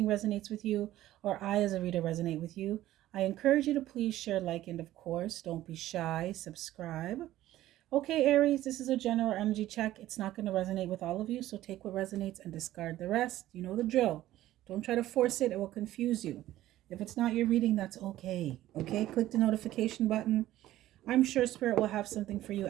resonates with you, or I as a reader resonate with you, I encourage you to please share, like, and of course, don't be shy, subscribe. Okay, Aries, this is a general energy check. It's not going to resonate with all of you, so take what resonates and discard the rest. You know the drill. Don't try to force it, it will confuse you. If it's not your reading, that's okay. Okay, click the notification button. I'm sure Spirit will have something for you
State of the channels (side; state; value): left; quieter; 14.5 dB